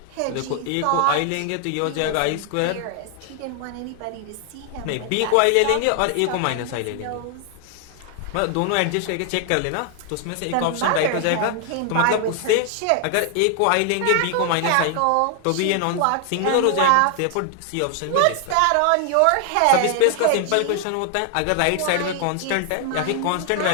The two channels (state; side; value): different; both; correlation 0.00